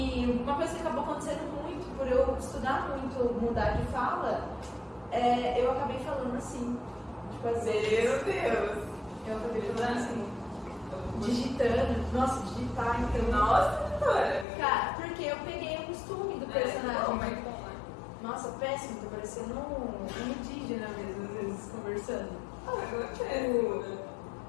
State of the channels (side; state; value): right; drops out; at 14.5 s